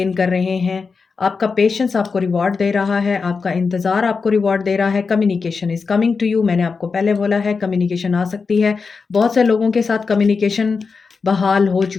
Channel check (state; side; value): quieter; right; 4.9 dB